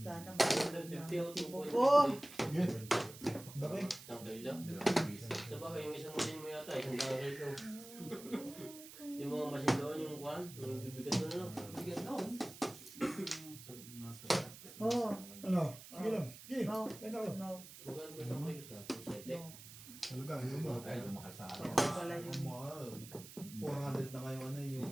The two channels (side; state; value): right; noise; hiss, 15 dB below the sound